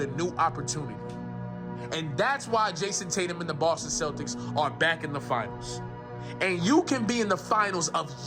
a new opportunity. And that's why Jayson Tatum and the Boston Celtics are back in the finals. And you can be in the finals of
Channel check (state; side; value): identical; both; correlation 1.00